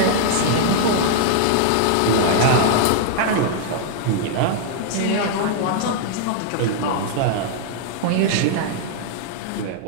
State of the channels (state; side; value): different; both; correlation 0.00